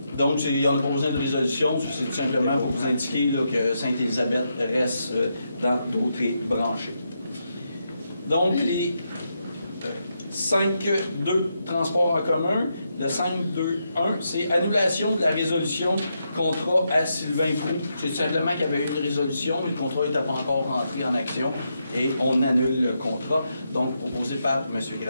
Donc, il n'y a pas besoin de résolution, c'est tout simplement pour vous indiquer là, que Sainte-Élisabeth reste dans Dautrey branchés. Donc, les 5.2, transport en commun. Le 5.2.1, c'est annulation de la résolution contrat à Sylvain Proulx. C'est simplement qu'il y avait eu une résolution, mais le contrat n'était pas encore rentré en action et on annule le contrat. Donc, proposé par M.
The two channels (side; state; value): both; inverted; correlation -0.82